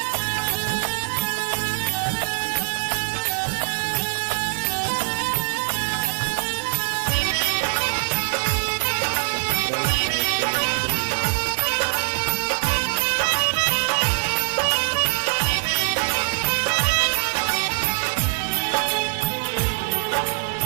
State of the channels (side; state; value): left; silent; digital silence